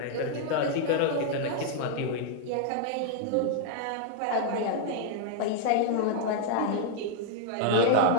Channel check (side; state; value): both; different; correlation 0.00